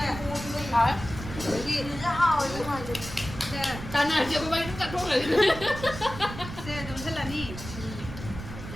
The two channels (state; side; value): noise; right; rumble, 10 dB below the sound